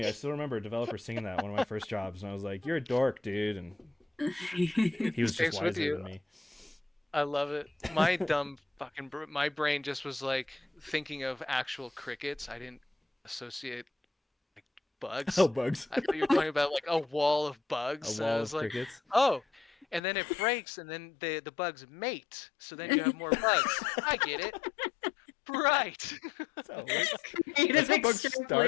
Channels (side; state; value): right; drops out; at 20.0 s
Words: I still remember a developer singing that one of my first jobs, and I was like, "You're a dork, dude," and he was just Stays with wiser you. than me. I love it. My dumb fucking my brain just was like thinking of actual crickets. I didn't associate like Oh, bugs. bugs! I thought you were talking about like a wall of A bugs. And I wall was of like, crickets. oh, and then it breaks, and then the bugs mate. So then you have more bugs. I get it. Right. That's how it works. Creative That's how bugs extrapolation.